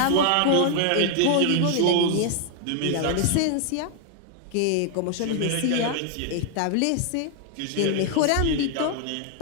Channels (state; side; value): different; both; correlation 0.00